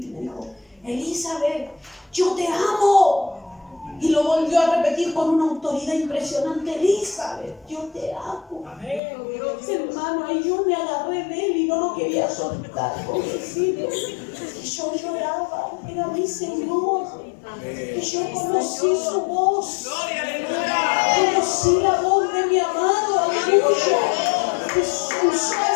Me dijo, Elizabeth, yo te amo. Y lo volvió a repetir con una autoridad impresionante. Elizabeth, yo te amo. Hermano, ahí yo me agarré de él y no lo quería soltar, pobrecito. Y yo lloraba, era mi Señor. Y yo conocí su voz. Conocí la voz de mi amado, aleluya. Que usó a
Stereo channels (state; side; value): drops out; right; at 9.0 s